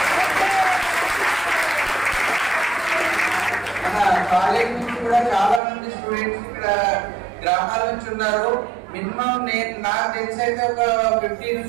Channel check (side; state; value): left; drops out; at 5.6 s